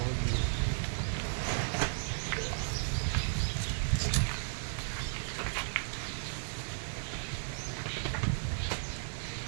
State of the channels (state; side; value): silent; left; digital silence